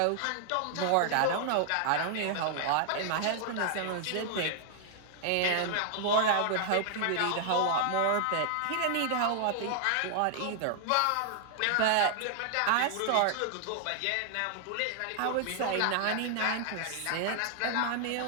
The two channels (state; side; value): different; both; correlation -0.01